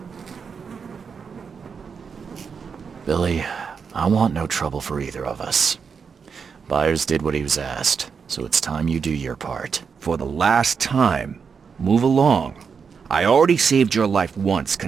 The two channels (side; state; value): left; quieter; 6.0 dB